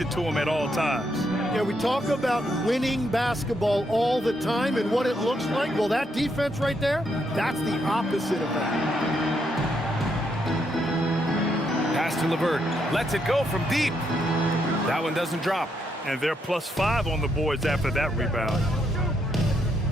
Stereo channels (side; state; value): both; normal; correlation 0.77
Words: to him at all times. Yeah, we talk about winning basketball all the time and what it looks like. Well, that defense right there, that's the opposite of that. Pass to LeVert. Lets it go from deep. That one doesn't drop. And they're +5 on the boards after that rebound.